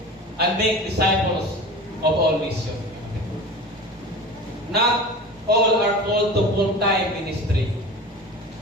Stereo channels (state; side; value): normal; both; correlation 0.34